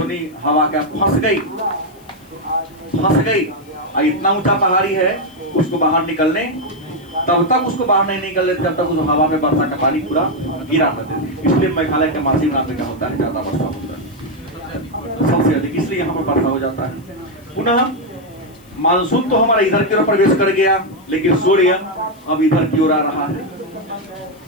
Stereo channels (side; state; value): left; noise; hiss, 29 dB below the sound